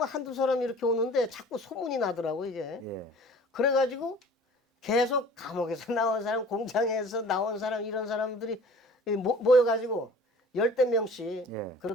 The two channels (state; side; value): normal; both; correlation 0.47